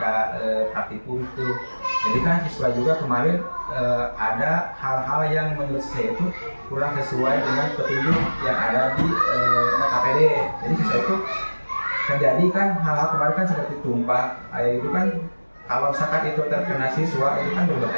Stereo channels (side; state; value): both; inverted; correlation -1.00